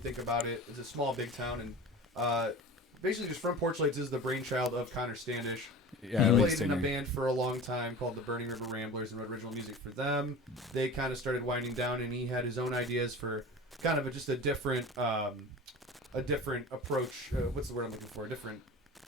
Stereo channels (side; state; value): both; normal; correlation 0.35